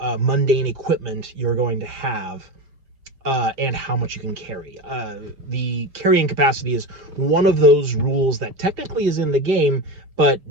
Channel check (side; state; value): left; late; 5.1 ms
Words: equipment you're going to have, and how much you can carry. The carrying capacity is one of those rules that technically is in the game, but